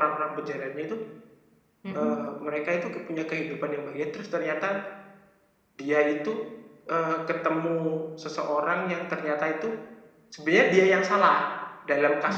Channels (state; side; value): identical; both; correlation 1.00